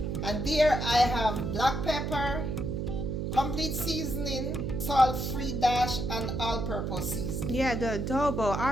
And there I have black pepper, complete seasoning, salt-free dash, and all-purpose seasoning. Yeah, the adobo.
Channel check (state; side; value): noise; right; hum, 2 dB below the sound